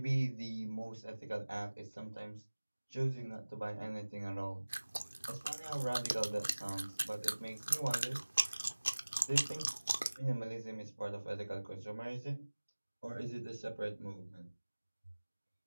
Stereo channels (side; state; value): both; inverted; correlation -1.00